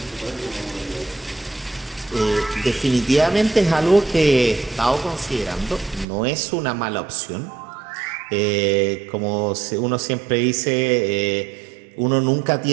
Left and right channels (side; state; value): left; drops out; at 6.1 s